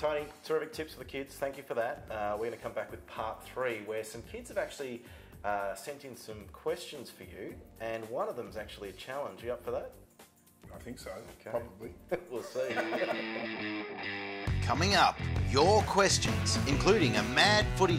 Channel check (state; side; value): identical; both; correlation 1.00